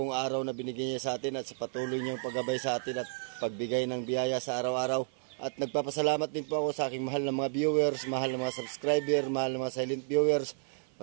araw na binigay niya sa atin at sa patuloy niyang paggabay sa atin at pagbigay ng biyaya sa araw-araw. At nagpapasalamat din po ako sa aking mahal na mga viewers, mahal na mga subscriber, mahal na mga silent viewers.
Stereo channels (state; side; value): silent; left; 57 dB below the other